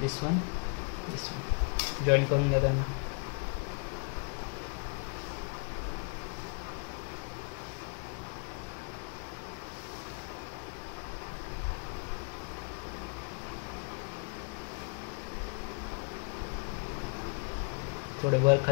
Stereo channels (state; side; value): quieter; right; 38.2 dB